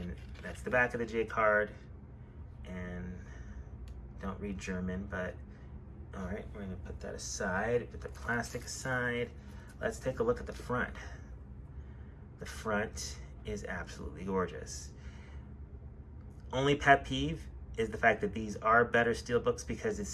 that's the back of the J card. And don't read German, but all right, we're gonna put that aside, put the plastic aside. Let's take a look at the front. The front is absolutely gorgeous. Only pet peeve is the fact that these are better Steelbooks because it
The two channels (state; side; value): identical; both; correlation 1.00